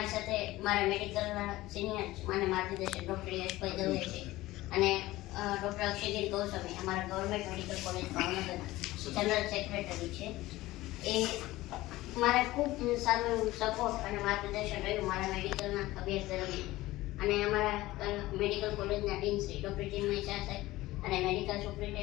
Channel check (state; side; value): quieter; right; 17.8 dB